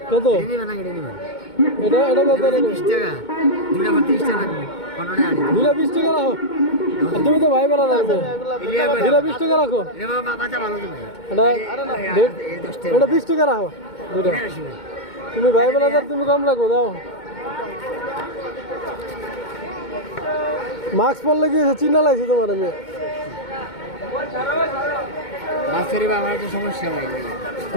কত নিবে না কেটে নিবে এটা কত 20 টাকা দুইটা 30 টাকা দুইটা 20 টাকা রাখো আর তুমি তো ভাই বলা লাগবে দুইটা 20 টাকা রাখো এ বাবা বাচ্চা ভালো তুমি এটা 20 টাকা রাখো দুইটা তুমি ভাই বলা তুমি কম রাখো দাও মাস্ক পরলে কি চিনা লাগছে তোমার আমি মাছেরই বা আমার তো সমস্যা নাই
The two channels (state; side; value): late; right; 2.2 ms